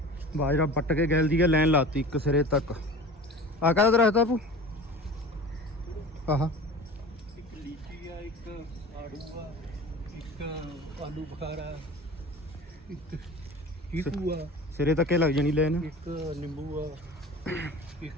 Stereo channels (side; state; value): both; normal; correlation 0.38